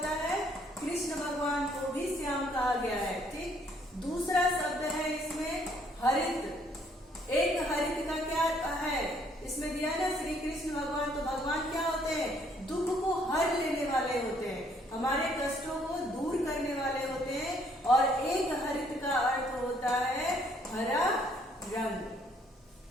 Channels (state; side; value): normal; both; correlation 0.65